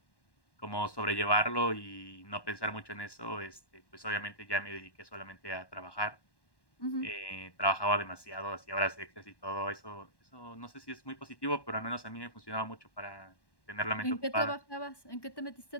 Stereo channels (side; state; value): right; late; 1.1 ms